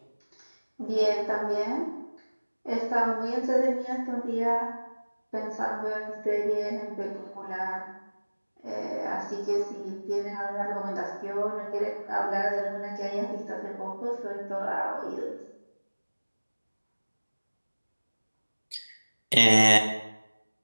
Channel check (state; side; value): inverted; both; correlation -1.00